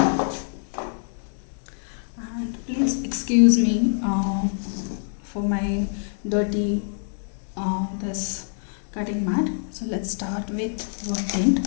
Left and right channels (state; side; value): silent; right; digital silence